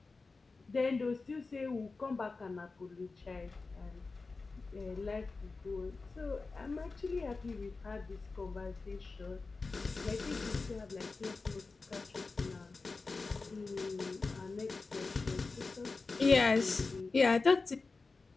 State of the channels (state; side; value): quieter; right; 3.9 dB